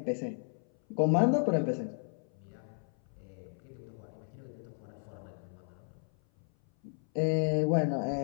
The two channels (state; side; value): silent; right; 55 dB below the other